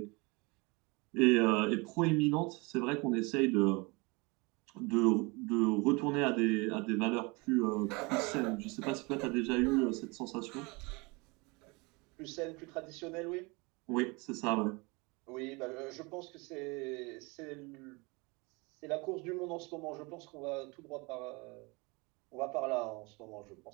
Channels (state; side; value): quieter; left; 27.3 dB